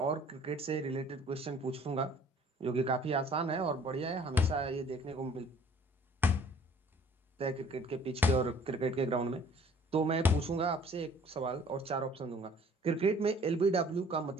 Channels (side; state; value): both; normal; correlation 0.54